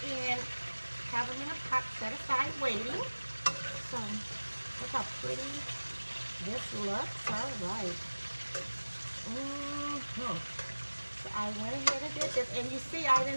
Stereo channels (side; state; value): both; inverted; correlation -1.00